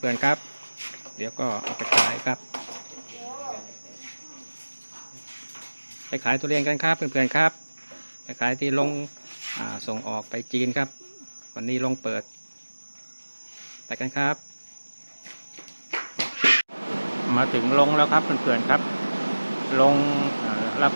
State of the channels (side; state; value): both; inverted; correlation -1.00